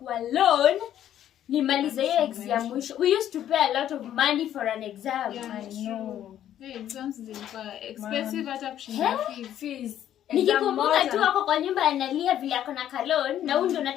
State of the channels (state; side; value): quieter; right; 11.1 dB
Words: loan nimalize hiyo exam mwisho. We used to pay a lot of money for an exam. Yeah, I know. The exams zilikuwa expensive hata kushinda fees. Nikikumbuka tu wako kwa nyumba analia vile ako na kalon na huyu ndo